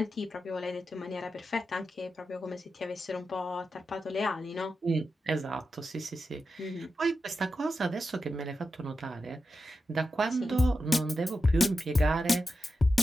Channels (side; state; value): both; normal; correlation 0.90